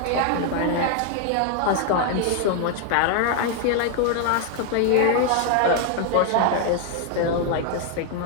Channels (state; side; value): different; both; correlation 0.00